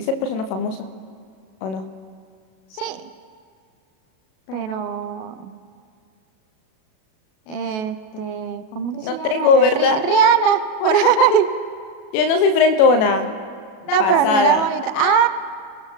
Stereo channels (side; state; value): right; late; 37 ms